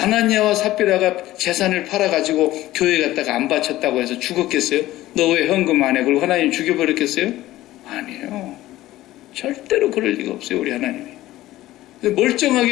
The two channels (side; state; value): right; quieter; 15.8 dB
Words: 삽비라가 재산을 팔아가지고 교회 갔다가 안 바쳤다고 해서 죽었겠어요? 너 왜 헌금 안 해? 그리고 하나님 죽여버렸겠어요? 아니에요. 절대로 그럴 리가 없어요. 우리 하나님이.